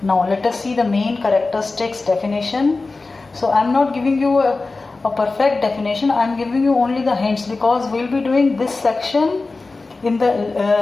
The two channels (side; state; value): right; quieter; 3.6 dB